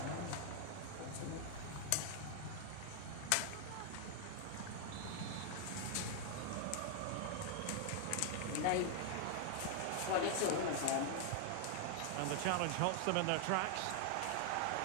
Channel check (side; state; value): both; different; correlation 0.00